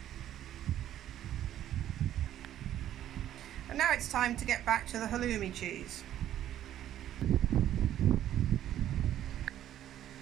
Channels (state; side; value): quieter; left; 11.7 dB